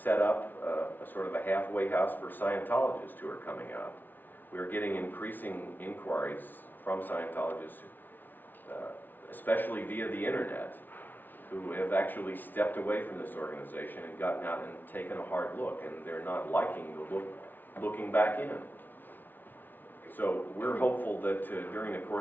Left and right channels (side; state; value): right; late; 0.088 ms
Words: up a sort of a halfway house for Scientologists who are coming out. We are getting increasing inquiries from Scientologists, especially via the internet, who have actually stepped away from this organization and gotten out and taken a hard look, and they're not liking the looking back in. So we're hopeful that during the